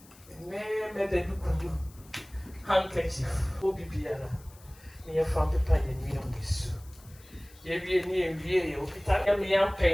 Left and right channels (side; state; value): left; noise; hiss, 25 dB below the sound